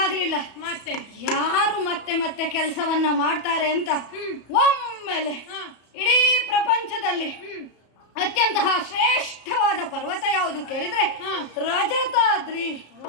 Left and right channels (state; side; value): late; right; 34 ms